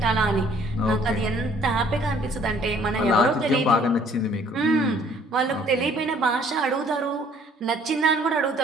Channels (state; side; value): normal; both; correlation 0.58